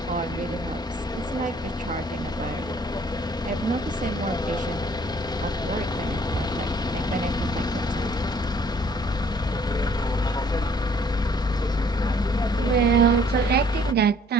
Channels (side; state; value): both; normal; correlation 0.59